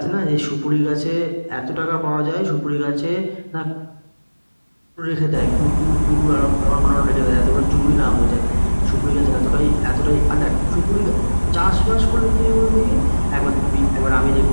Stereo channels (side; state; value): both; inverted; correlation -1.00